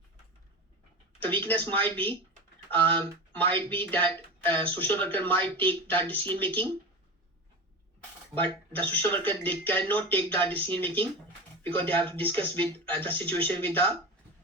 The weakness might be that social worker might take that decision making, but the social worker, they cannot take that decision making because they have to discuss with the situation with the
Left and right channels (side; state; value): both; normal; correlation 0.26